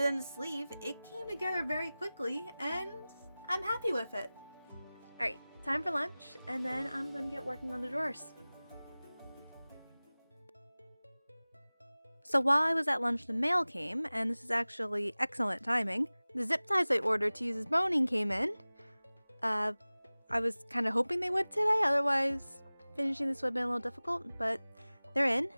than the sleeve, it came together very quickly and I'm happy with it. Alright, time for lunch and then I'm gonna get working on the drawers. So while I was at lunch, the mail came, and this is actually excellent timing. The zip ties I ordered to use as boning came in. I was kind of hoping they would today, otherwise finishing this would have been a little difficult, but they're in.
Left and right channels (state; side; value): inverted; both; correlation -0.99